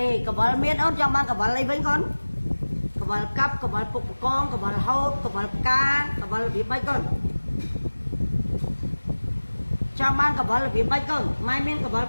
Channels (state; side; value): inverted; both; correlation -1.00